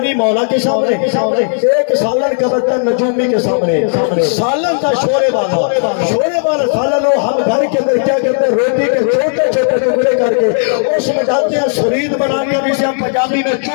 مولا کے سامنے ایک سالن کا برتن نجومی کے سامنے سالن تھا شورے والا سالن ہو ہم گھر کے اندر کیا کرتے ہیں روٹی کے چھوٹے چھوٹے ٹکڑے کر کے اس میں ڈالتے ہیں سرید بنا کے جسے ہم پنجابی میں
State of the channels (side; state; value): right; silent; digital silence